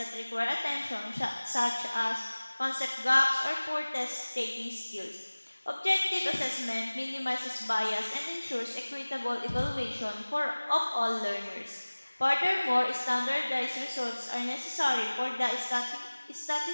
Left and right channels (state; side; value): inverted; both; correlation -1.00